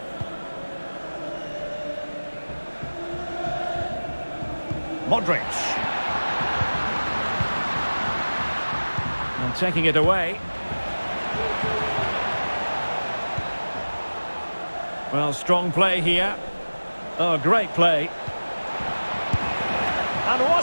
Modric. And taking it away. Well, strong play here. Oh, great play. And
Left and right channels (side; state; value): both; inverted; correlation -1.00